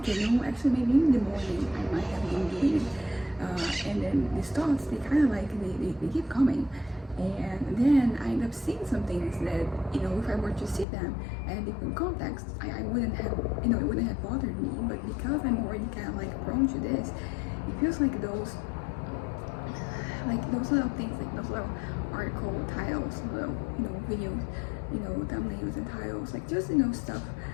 actually maybe in the morning, I might have been doing it. And then these thoughts, they kind of like they keep coming, and then I end up seeing some things that, if I were to see them in a different context, I wouldn't have, it wouldn't have bothered me. But because I'm already kind of like prone to this, it feels like those little things, like those little article titles, little, videos, thumbnails and titles, like just, stuff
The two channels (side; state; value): right; drops out; at 10.9 s